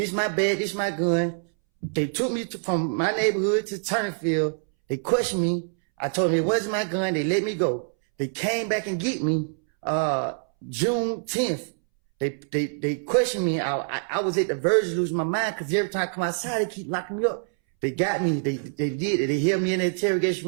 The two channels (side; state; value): left; silent; 62 dB below the other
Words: my bag, this my gun. They took me from my neighborhood to Turnerfield. They questioned me. I told them it wasn't my gun. They let me go. They came back and get me June 10th. They questioned me. I was at the verge of losing my mind because every time I come outside, they keep locking me up. They got me. They did it. They held me in the interrogation